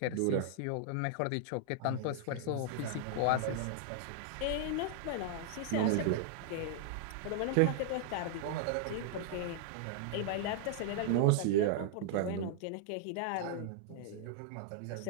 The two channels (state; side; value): different; both; correlation -0.01